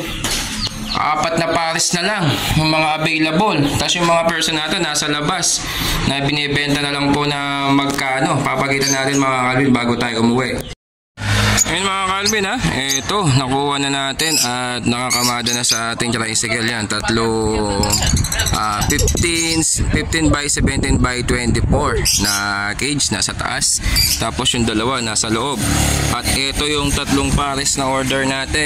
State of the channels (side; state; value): both; identical; correlation 1.00